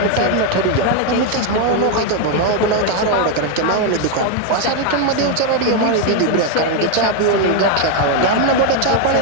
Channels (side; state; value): both; different; correlation 0.01